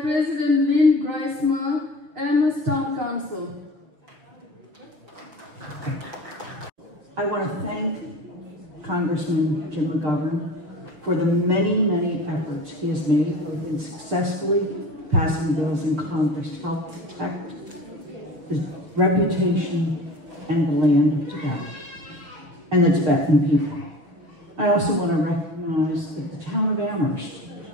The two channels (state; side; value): late; left; 6.3 ms